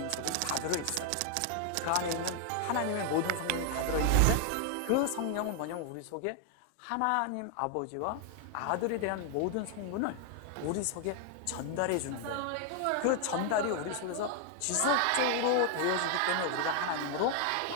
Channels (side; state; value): both; different; correlation 0.00